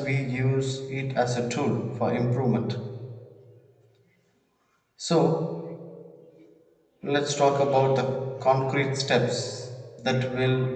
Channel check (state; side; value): identical; both; correlation 1.00